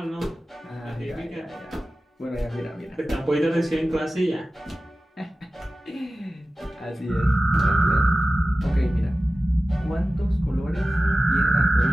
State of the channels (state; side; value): normal; both; correlation 0.96